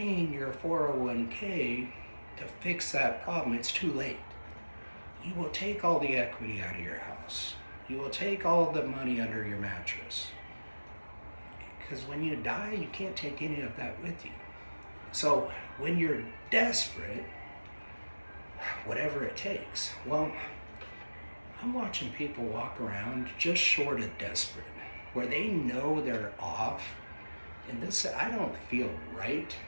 your 401k to fix that problem. It's too late. You will take all the equity out of your house. You will take all the money under your mattress. Because when you die, you can't take any of that with you. So when you're desperate, whatever it takes, well, I'm watching people walk around just short of desperate. where they know they're off, and this, I don't feel right.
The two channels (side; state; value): both; inverted; correlation -1.00